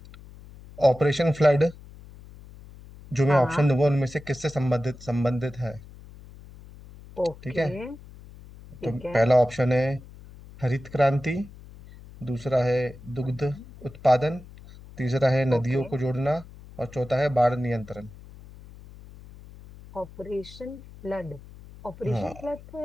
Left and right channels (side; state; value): left; noise; hum, 19 dB below the sound